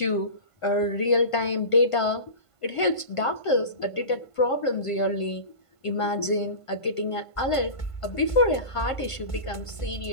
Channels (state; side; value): late; right; 1.5 ms